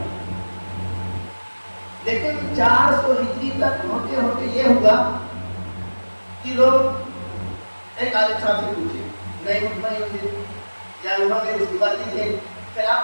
لیکن 400 ہجری تک ہوتے ہوتے یہ ہوا کہ لوگ ایک عالم صاحب سے پوچھے، نہیں مطمئن ہوتے یا انہوں نے اس کی بات نہیں تھی، پھر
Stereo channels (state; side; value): inverted; both; correlation -1.00